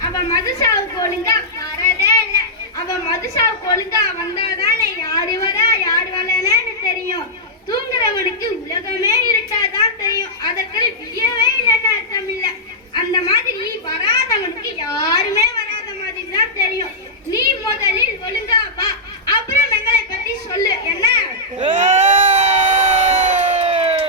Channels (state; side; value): normal; both; correlation -0.10